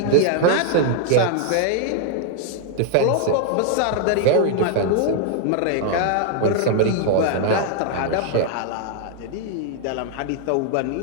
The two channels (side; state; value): both; different; correlation 0.00